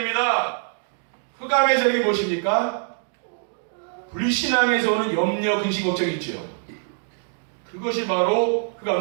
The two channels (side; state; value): left; silent; 58 dB below the other